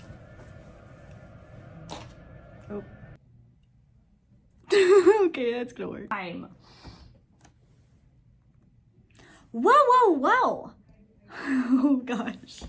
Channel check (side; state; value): both; identical; correlation 1.00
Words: Oh. Okay, that's gonna work. Time. Whoa, whoa, whoa. Oh, gosh.